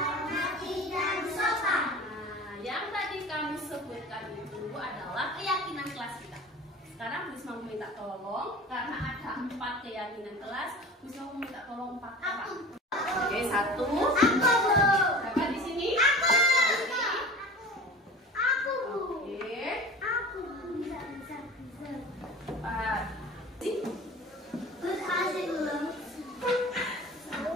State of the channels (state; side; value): normal; both; correlation 0.38